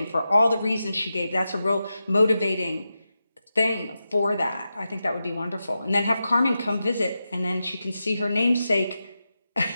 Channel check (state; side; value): inverted; both; correlation -0.90